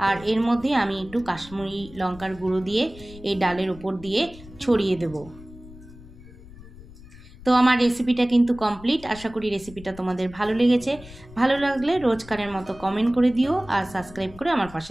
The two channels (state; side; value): noise; left; rumble, 19 dB below the sound